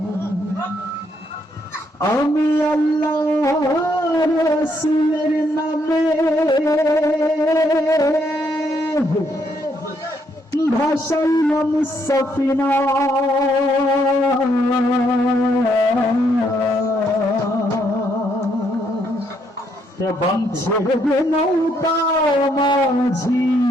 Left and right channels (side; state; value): both; normal; correlation 0.73